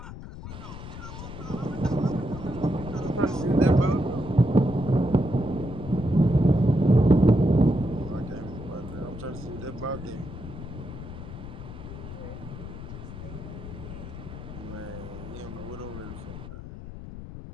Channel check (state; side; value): noise; left; rumble, 11 dB below the sound